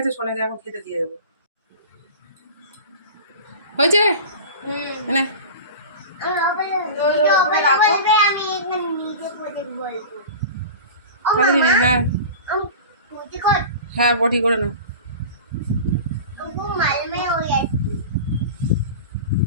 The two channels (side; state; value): both; inverted; correlation -0.33